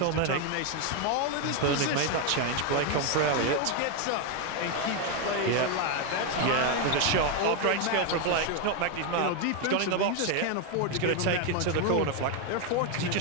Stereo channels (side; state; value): both; different; correlation 0.02